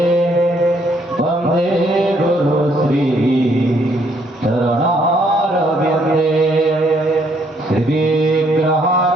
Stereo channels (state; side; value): normal; both; correlation 0.69